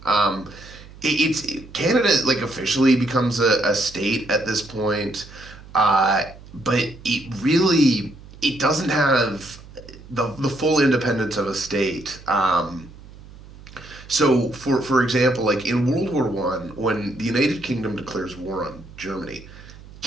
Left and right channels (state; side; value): noise; right; hum, 19 dB below the sound